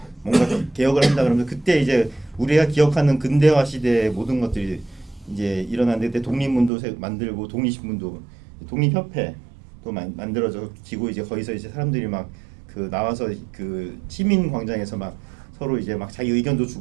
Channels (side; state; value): left; drops out; at 6.7 s